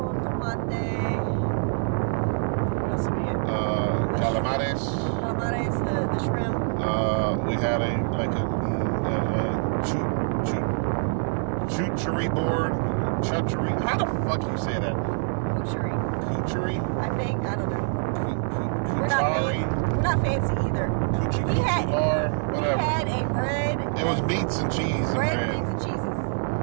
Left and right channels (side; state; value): left; silent; digital silence